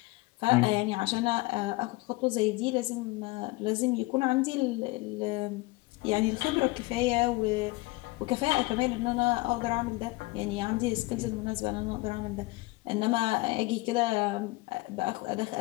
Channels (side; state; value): right; quieter; 22.3 dB